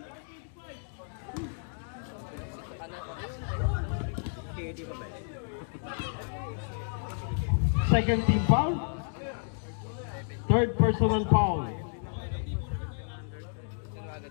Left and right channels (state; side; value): silent; right; digital silence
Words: Second team foul. Third personal foul.